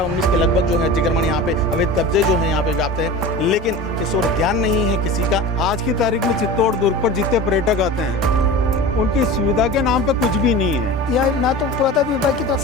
के लगभग जो है अतिक्रमण यहाँ पे अवैध कब्जे जो है यहाँ पे व्याप्त है, लेकिन इस ओर ध्यान नहीं है किसी का। आज की तारीख में चित्तौड़ दुर्ग पर जितने पर्यटक आते हैं उनकी सुविधा के नाम पे कुछ भी नहीं है। यह ना तो पुरातत्व विभाग की तरफ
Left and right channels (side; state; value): both; normal; correlation 0.33